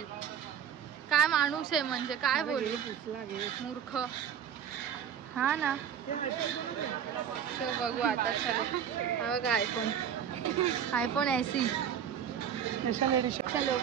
काय माणूस आहे म्हणजे काय बोलू. मूर्ख. हा ना. सो बघू आता. चलो हा बघा आयफोन ऐसी. चलो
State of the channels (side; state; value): left; quieter; 8.7 dB